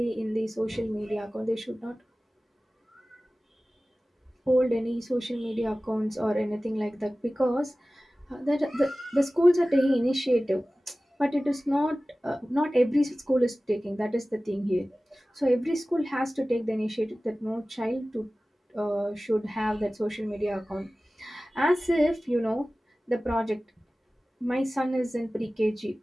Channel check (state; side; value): normal; both; correlation 0.97